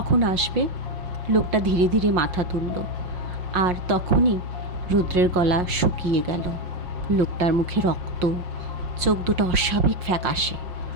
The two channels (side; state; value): left; late; 5.6 ms